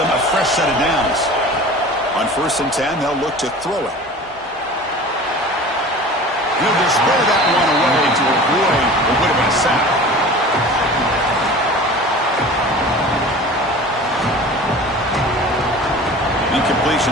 a fresh set of downs. On 1st and 10, they'll look to throw it. He'll just throw that one away to avoid what would have been a sack.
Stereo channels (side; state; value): both; normal; correlation 0.40